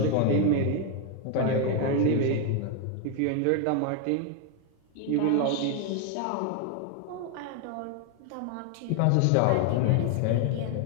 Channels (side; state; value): both; different; correlation 0.01